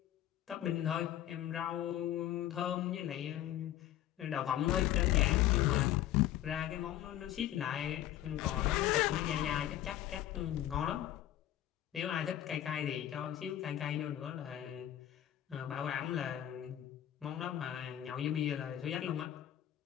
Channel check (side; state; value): right; quieter; 12.4 dB